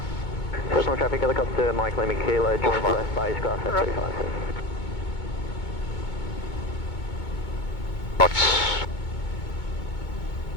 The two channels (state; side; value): late; right; 2.2 ms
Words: Cessnock traffic helicopter, Mike Lemmy Kilo, joins left base, grass at 35. Knots.